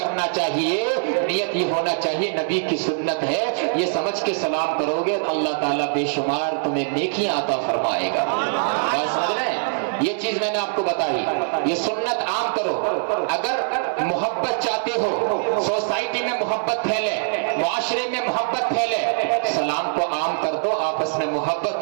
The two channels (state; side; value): silent; left; digital silence